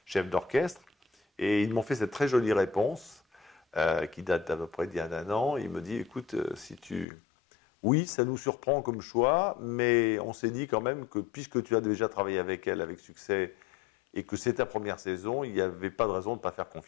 chef d'orchestre. Et ils m'ont fait cette très jolie réponse qui date d'à peu près d'il y a un an. Il me dit, écoute, oui, ça nous surprend comme choix, mais on s'est dit quand même que puisque tu as déjà travaillé avec elle avec succès et que c'est ta première saison, il n'y avait pas de raison de ne pas faire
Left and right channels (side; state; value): right; drops out; at 7.1 s